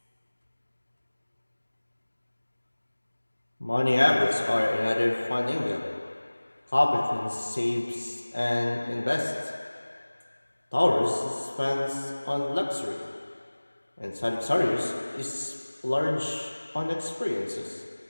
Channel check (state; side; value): inverted; both; correlation -1.00